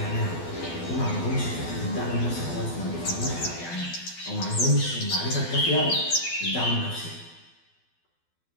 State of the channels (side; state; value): right; late; 12 ms